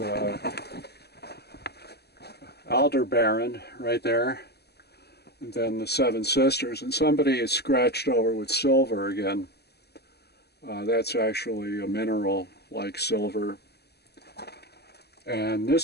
Aldebaran right there, and then the Seven Sisters, and somebody is scratched over with silver again. That's actually a mineral like silver, and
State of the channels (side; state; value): right; late; 0.48 ms